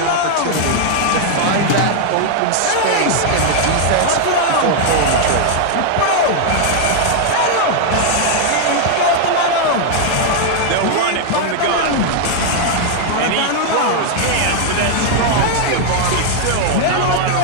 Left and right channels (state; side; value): different; both; correlation 0.00